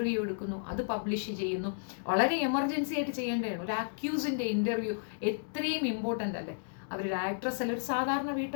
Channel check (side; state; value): right; silent; digital silence